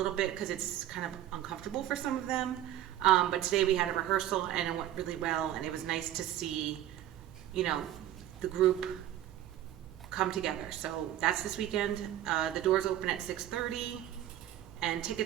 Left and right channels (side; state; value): left; quieter; 12.7 dB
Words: bit because it's kind of uncomfortable for some of them. But today we had a rehearsal and it went really well, and it was nice to see, you know, the group come together. So that's this weekend. The doors open at 6:30, and